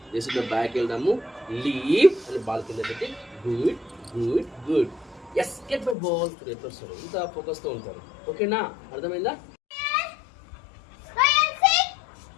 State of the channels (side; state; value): right; drops out; at 6.0 s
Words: జస్ట్ బ్యాక్ వెళ్దాము లీవ్ అని బాల్ కింద పెట్టి good good good yes get my ball ఎట్లా వస్తారు ఇంత ఫోకస్తో ఉంటారు. ఓకేనా? అర్థమైందా? Ryan, sit.